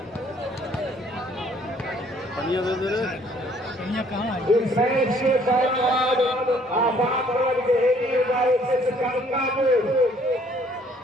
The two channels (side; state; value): both; normal; correlation 0.61